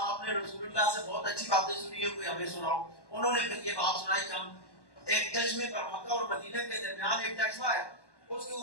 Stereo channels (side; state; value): right; late; 1.1 ms